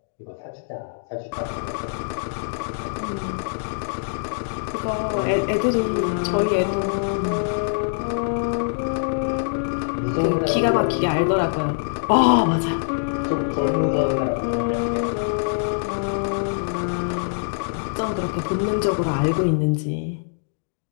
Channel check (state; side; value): silent; right; digital silence